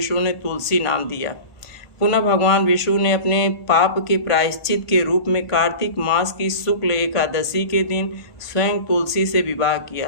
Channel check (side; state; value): right; late; 1.5 ms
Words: ने तुलसी नाम दिया। पुनः भगवान विष्णु ने अपने पाप के प्रायश्चित के रूप में कार्तिक मास की शुक्ल एकादशी के दिन स्वयं तुलसी से विवाह